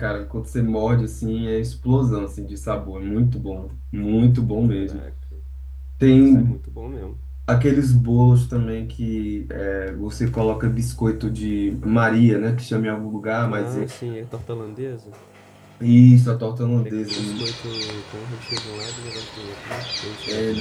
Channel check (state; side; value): identical; both; correlation 1.00